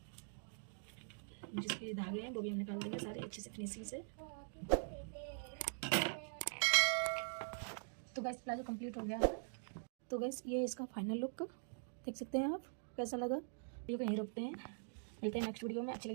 जिसके धागे हैं वो भी हम निकाल देंगे सारे अच्छे से फिनिशिंग से। तो गाइस प्लाजो कंप्लीट हो गया है। तो गाइस ये इसका फाइनल लुक देख सकते हैं आप, कैसा लगा। वीडियो को यहीं रोकते हैं, मिलते हैं नेक्स्ट वीडियो में। अच्छा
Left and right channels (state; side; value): silent; left; digital silence